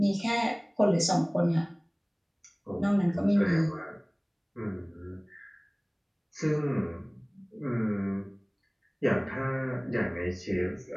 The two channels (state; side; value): identical; both; correlation 1.00